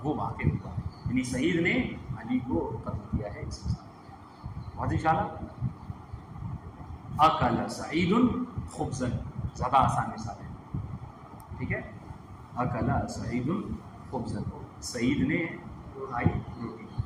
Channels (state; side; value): identical; both; correlation 1.00